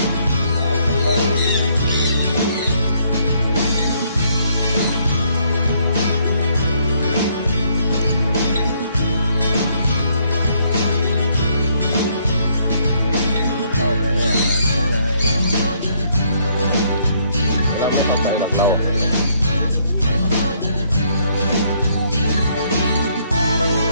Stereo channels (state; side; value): inverted; both; correlation -0.69